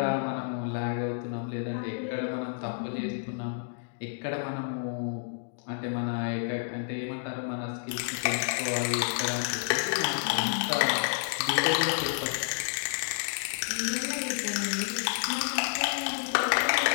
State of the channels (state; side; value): silent; right; digital silence